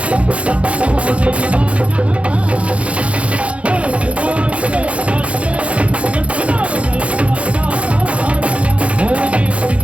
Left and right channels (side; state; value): left; late; 0.062 ms